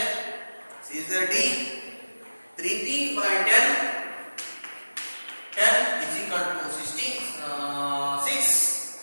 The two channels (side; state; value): both; inverted; correlation -1.00